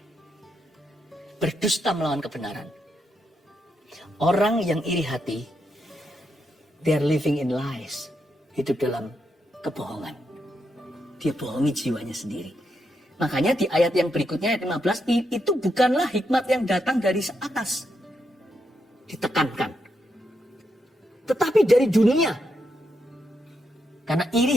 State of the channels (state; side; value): normal; both; correlation 0.82